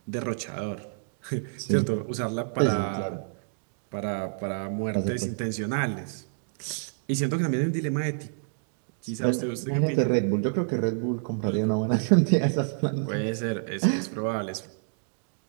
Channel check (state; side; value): silent; left; digital silence